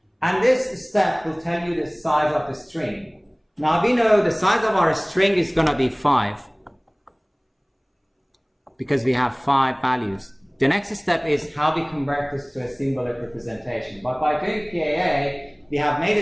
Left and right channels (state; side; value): identical; both; correlation 1.00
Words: And this step will tell you the size of the string. Now we know the size of our string is going to be 5. Because we have 5 values. The next step is how we convert this to a symbolic representation. But by doing PAA, we have made